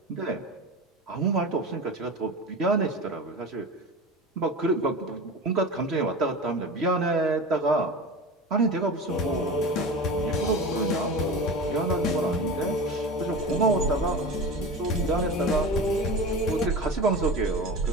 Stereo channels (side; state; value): both; normal; correlation 0.30